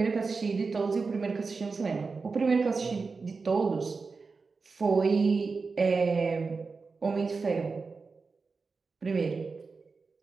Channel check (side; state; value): left; quieter; 4.5 dB